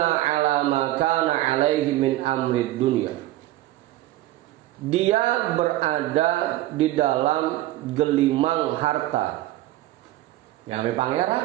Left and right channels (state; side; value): quieter; left; 15.9 dB